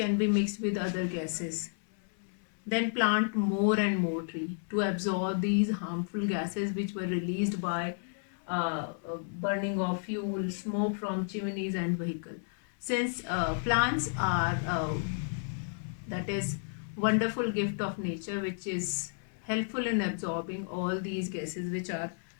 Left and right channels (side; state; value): right; silent; 56 dB below the other